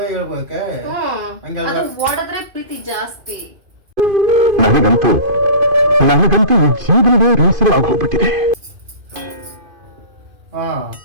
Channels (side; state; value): left; late; 2.5 ms